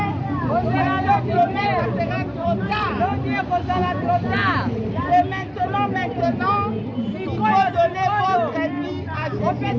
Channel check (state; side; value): identical; both; correlation 1.00